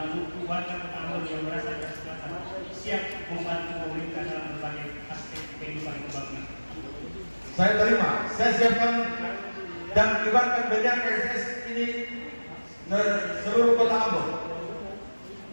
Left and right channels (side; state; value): both; inverted; correlation -1.00